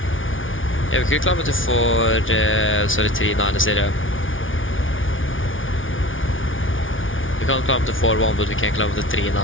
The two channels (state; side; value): late; right; 0.57 ms